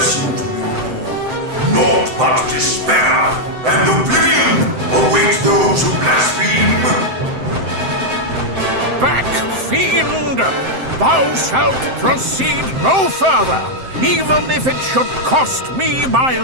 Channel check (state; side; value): late; left; 7.7 ms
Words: to you all. Naught but despair and oblivion await those who blaspheme. Back, fiend! Thou shalt proceed no further, even if it should cost me my